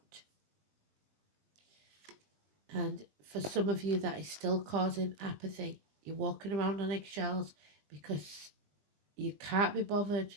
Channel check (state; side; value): late; left; 20 ms